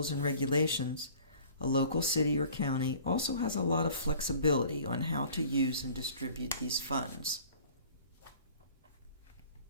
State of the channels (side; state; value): both; inverted; correlation -0.48